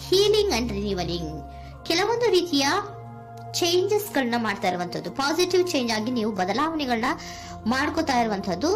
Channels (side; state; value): both; identical; correlation 1.00